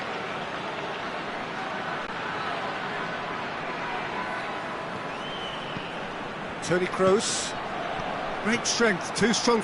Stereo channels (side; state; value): both; identical; correlation 1.00